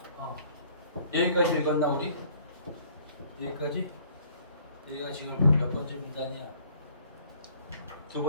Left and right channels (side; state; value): both; inverted; correlation -0.58